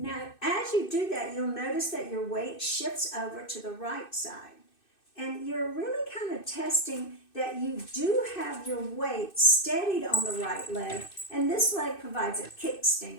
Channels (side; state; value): right; late; 2.6 ms